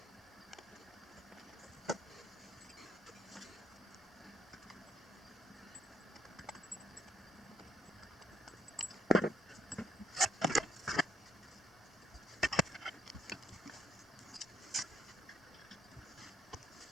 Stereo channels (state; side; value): normal; both; correlation 0.70